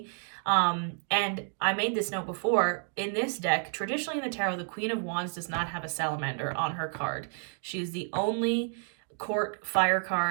And I made this note before, in this deck, traditionally in the tarot, the Queen of Wands does not have a salamander on her card. She is the only court fire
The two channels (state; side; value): silent; left; 55 dB below the other